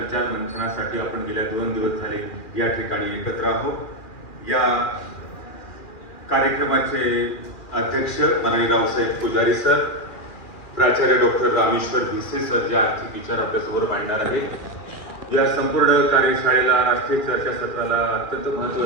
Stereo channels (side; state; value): right; late; 2.4 ms